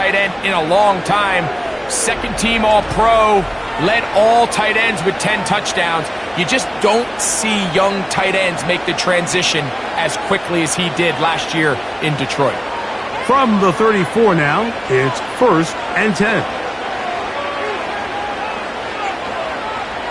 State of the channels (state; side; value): identical; both; correlation 1.00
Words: end in a long time. 2nd team All-Pro, led all tight ends with 10 touchdowns. You just don't see young tight ends make the transition as quickly as he did last year in Detroit. From the 34 now, it's 1st and 10.